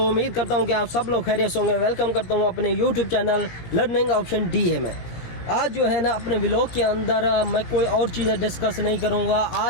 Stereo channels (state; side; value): late; right; 17 ms